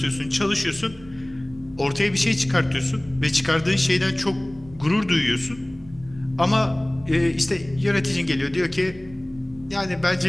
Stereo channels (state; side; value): noise; right; rumble, 21 dB below the sound